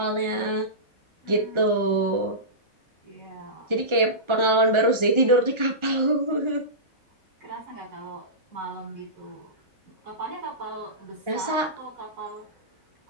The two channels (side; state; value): left; late; 1.4 ms